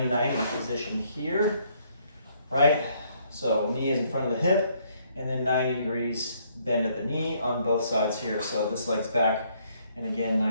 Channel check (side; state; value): both; inverted; correlation -0.68